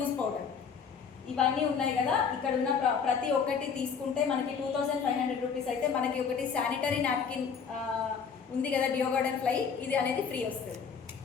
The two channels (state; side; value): quieter; right; 6.3 dB